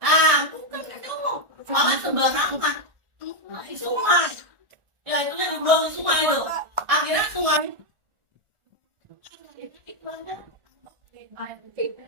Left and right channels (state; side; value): late; left; 1.4 ms